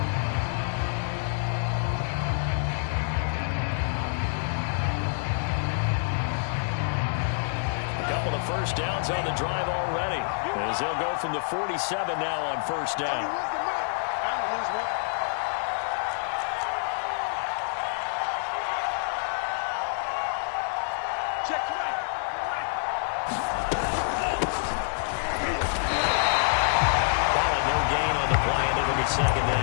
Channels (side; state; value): right; silent; digital silence